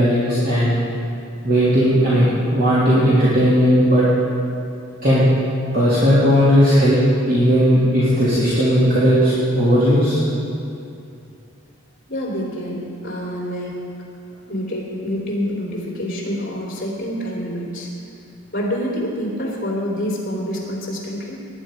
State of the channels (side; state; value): both; normal; correlation 0.67